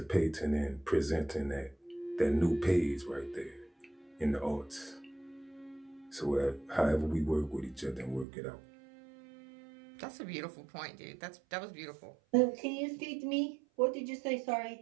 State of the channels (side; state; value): left; drops out; at 8.2 s